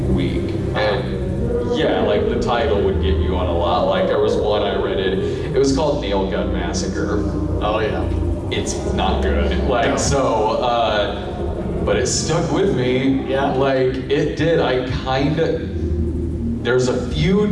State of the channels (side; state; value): both; identical; correlation 1.00